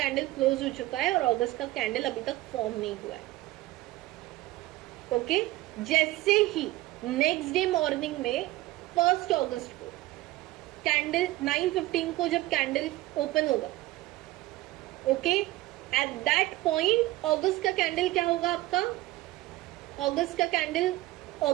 क्लोज हो चुका है और अगस्त का कैंडल अभी तक फॉर्म नहीं हुआ है. ओके, जैसे ही नेक्स्ट डे मॉर्निंग में 1 अगस्त को कैंडल 9:15 को जब कैंडल ओपन होगा, ओके, एट दैट पॉइंट अगस्त का कैंडल क्या होगा आपका, अगस्त का कैंडल,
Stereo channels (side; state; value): left; quieter; 17.9 dB